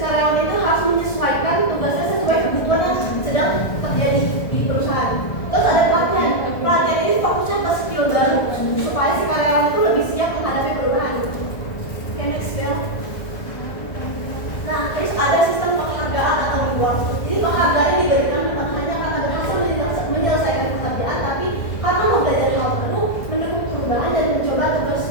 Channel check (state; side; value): late; right; 1.5 ms